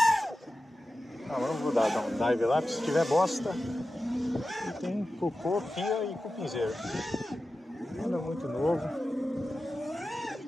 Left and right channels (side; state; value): both; normal; correlation 0.94